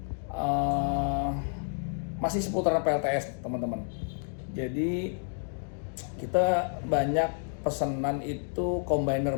masih seputaran PLTS teman-teman. Jadi kita banyak pesanan itu combiner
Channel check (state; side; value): silent; right; digital silence